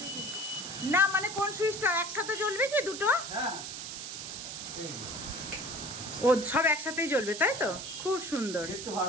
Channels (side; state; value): right; noise; hiss, 7 dB below the sound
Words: না, মানে কোন সুইচটা একসাথে জ্বলবে কি দুটো? ও সব একসাথেই জ্বলবে, তাই তো? খুব সুন্দর,